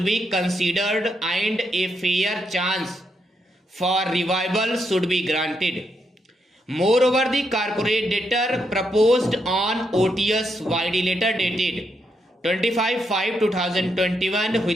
be considered and a fair chance for revival should be granted. Moreover, the corporate debtor proposed on OTS YD letter dated 25/5/2021,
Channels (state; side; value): normal; both; correlation 0.79